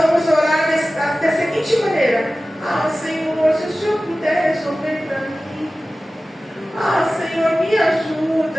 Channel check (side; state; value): both; normal; correlation 0.96